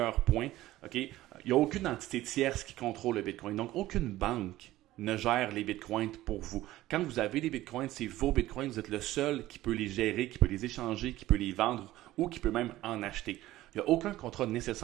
points. Okay? Il n'y a aucune entité tierce qui contrôle le bitcoin. Donc, aucune banque ne gère les bitcoins pour vous. Quand vous avez des bitcoins, c'est vos bitcoins. Vous êtes le seul qui peut les gérer, qui peut les échanger, qui peut les vendre ou qui peut même en acheter. Il n'y a aucun contrat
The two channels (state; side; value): quieter; left; 15.8 dB